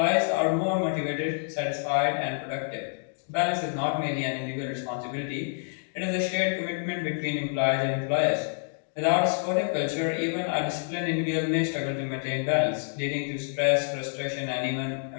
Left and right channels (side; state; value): right; silent; digital silence